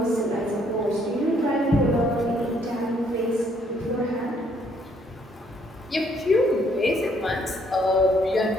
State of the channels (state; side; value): normal; both; correlation 0.67